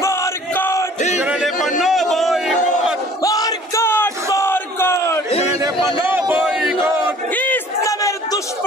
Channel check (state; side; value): normal; both; correlation 0.51